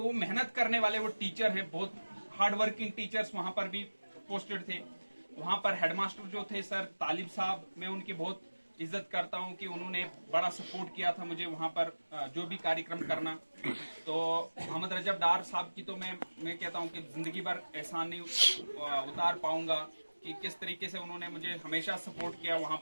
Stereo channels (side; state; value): both; inverted; correlation -1.00